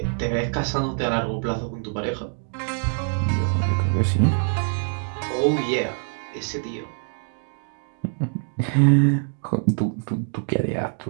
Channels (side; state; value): left; silent; 55 dB below the other